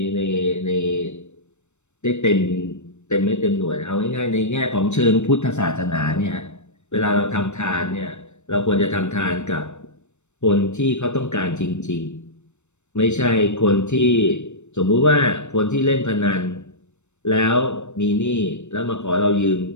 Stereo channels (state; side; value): late; right; 0.83 ms